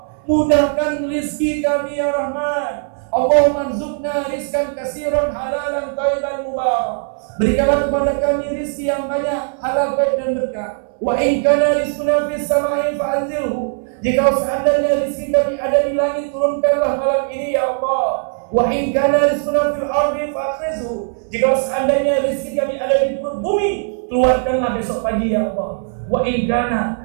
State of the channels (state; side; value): silent; left; 67 dB below the other